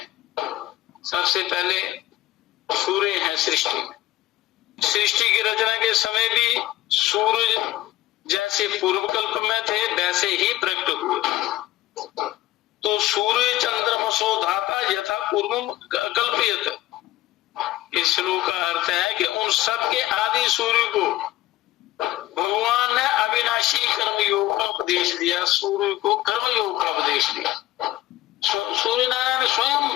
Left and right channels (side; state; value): right; quieter; 16.0 dB